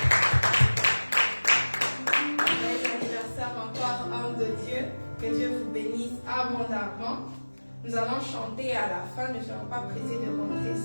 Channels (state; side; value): inverted; both; correlation -1.00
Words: l'anniversaire encore, homme de Dieu. Que Dieu vous bénisse abondamment. Nous allons chanter à la fin. Ne soyons pas pressés de rentrer,